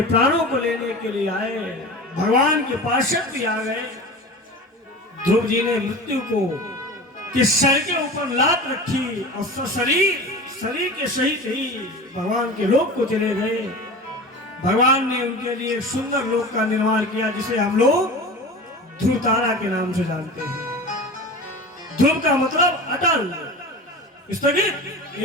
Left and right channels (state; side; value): normal; both; correlation 0.33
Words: प्राणों को लेने के लिए आए। भगवान के पार्षद भी आ गए। ध्रुव जी ने मृत्यु को कि सर के ऊपर लात रखी और शरीर के सहित ही भगवान के लोक को चले गए। भगवान ने उनके लिए सुंदर लोक का निर्माण किया, जिसे हम लोग ध्रुव तारा के नाम से जानते हैं। ध्रुव का मतलब अटल, स्थगित,